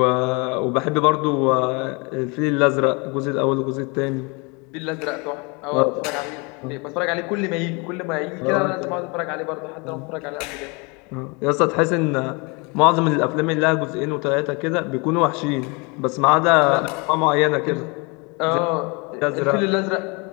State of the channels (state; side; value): quieter; right; 29.9 dB